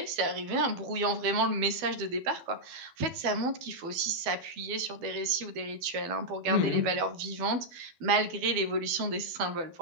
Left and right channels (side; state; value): left; late; 12 ms